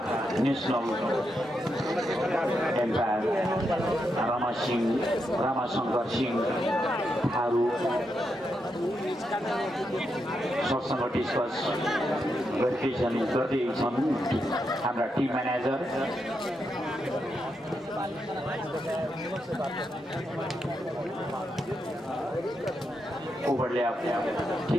नेसनल एम्पायर रामाशंकर सिंह थारू सरसँग डिस्कस गर्दैछन् हाम्रा टिम म्यानेजर ओवरलैप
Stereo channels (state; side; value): normal; both; correlation 0.83